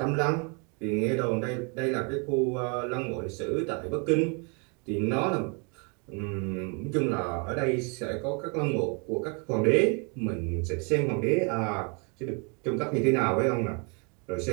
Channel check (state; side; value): quieter; left; 35.0 dB